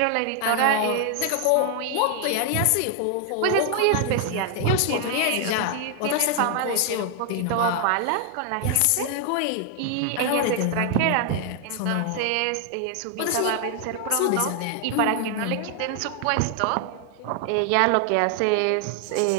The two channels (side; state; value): both; different; correlation 0.00